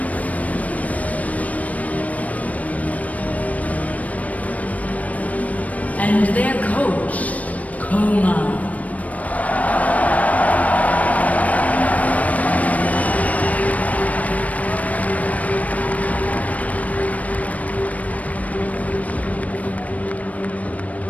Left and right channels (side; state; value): right; late; 0.070 ms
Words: And their coach, KOO.